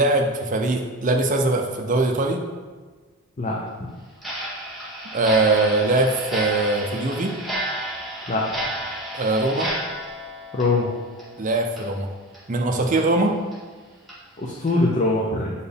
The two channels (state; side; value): normal; both; correlation 0.26